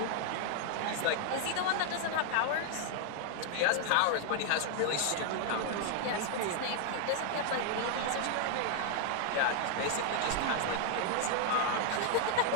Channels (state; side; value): different; both; correlation 0.00